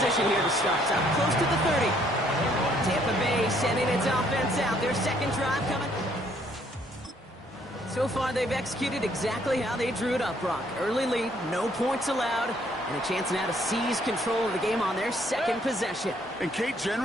here to start. Up close to the 30. Tampa Bay sending its offense out. Their second drive coming. So far, they've executed exactly how they drew it up, Brock. Early lead, no points allowed, and a chance now to seize control of the game on their second possession. And Kate,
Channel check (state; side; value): normal; both; correlation 0.66